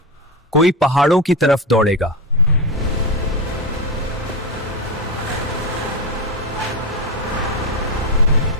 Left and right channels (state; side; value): normal; both; correlation 0.15